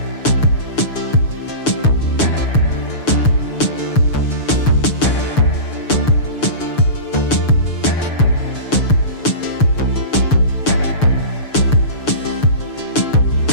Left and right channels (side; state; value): right; late; 6.7 ms